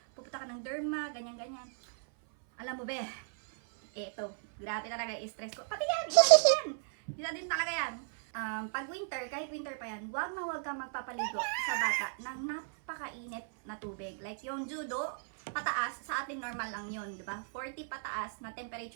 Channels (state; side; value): silent; left; 54 dB below the other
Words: pupunta ka ng derma, ganyan-ganyan. Alam mo be, eto, grabe talaga i-stress ko. Pati yan, isa din talaga yan. Pag winter, kahit winter pa yan, huwag ka magpapaligo sa bata ng napakainit na tubig. Like yung judo, pataas, sa atin normal lang yun, di ba? 40 pataas na